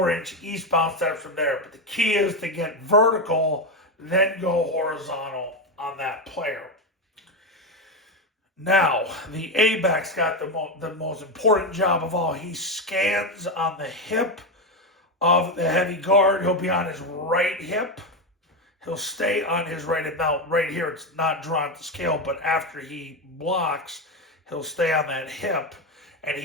eastbound steps from there. But the key is to get vertical, then go horizontal on that player. Now, the A-back's got the most important job of all. He scans on the hip of the heavy guard. He'll be on his right hip. He'll stay on his right hip. Now, right here, it's not drawn to scale, but after he blocks, he'll stay on that hip. And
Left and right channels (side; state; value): both; normal; correlation 0.11